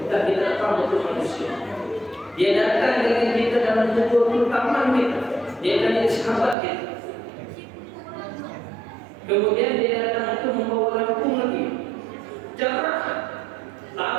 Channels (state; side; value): drops out; left; at 6.6 s